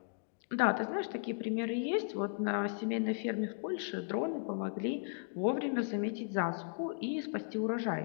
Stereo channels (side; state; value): right; silent; digital silence